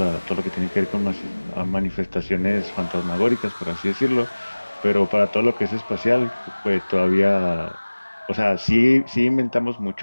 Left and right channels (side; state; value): both; inverted; correlation -1.00